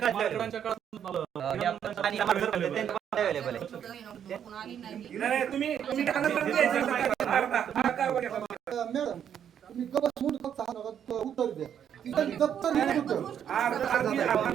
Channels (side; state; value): left; quieter; 9.0 dB